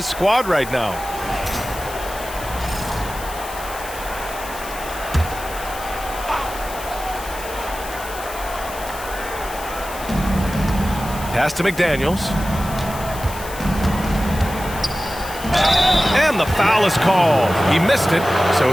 squad right now. Pass to McDaniels. And the foul is called. He missed it, so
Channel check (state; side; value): noise; left; hiss, 13 dB below the sound